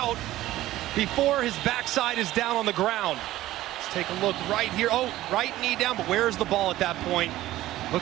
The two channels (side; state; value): left; quieter; 15.4 dB